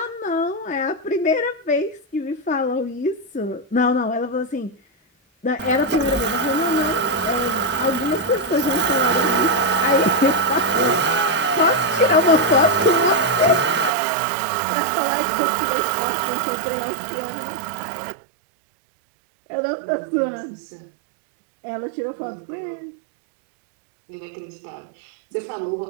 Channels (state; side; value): drops out; left; at 13.9 s